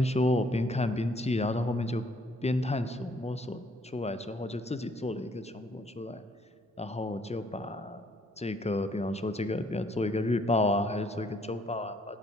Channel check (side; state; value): both; normal; correlation 0.66